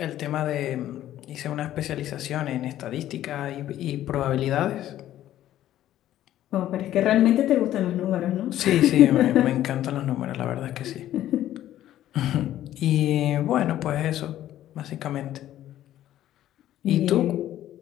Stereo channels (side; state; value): right; quieter; 12.8 dB